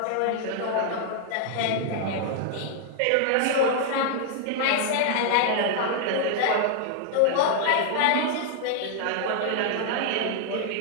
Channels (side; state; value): both; different; correlation 0.00